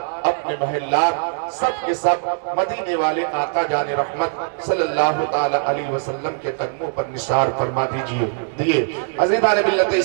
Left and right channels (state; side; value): silent; left; digital silence